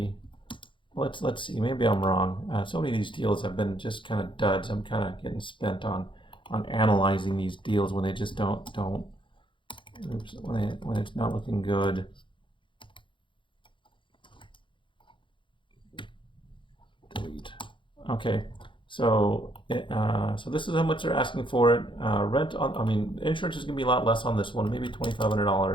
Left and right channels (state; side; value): late; right; 0.24 ms